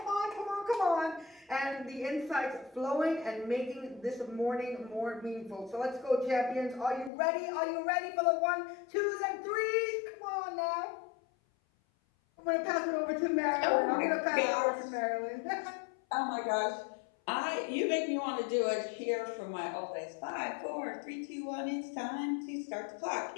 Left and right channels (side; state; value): right; drops out; at 7.1 s